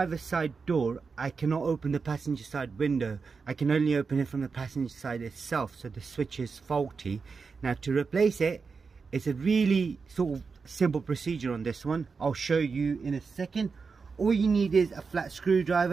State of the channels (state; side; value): quieter; left; 5.0 dB